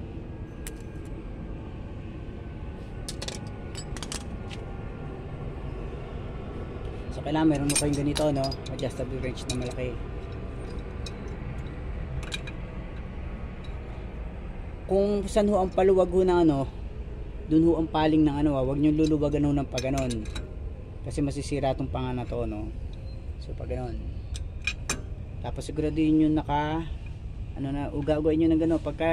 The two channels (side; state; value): both; identical; correlation 1.00